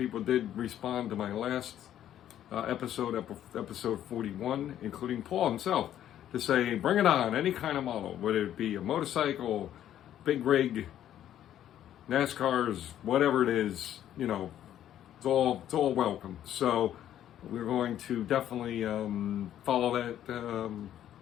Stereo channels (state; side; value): quieter; right; 11.3 dB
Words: did respond to my last episode 41, including Paul himself, to say, bring it on, any kind of model, whether it be a motorcycle, big rig, NASCARs, whatever it is, you know, it's all welcome. So we're going to definitely follow that,